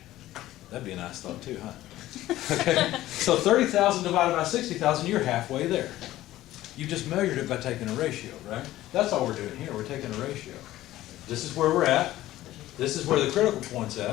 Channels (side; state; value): right; quieter; 15.1 dB